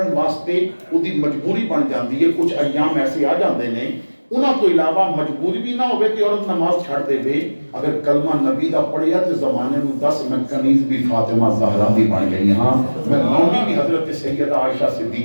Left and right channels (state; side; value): inverted; both; correlation -1.00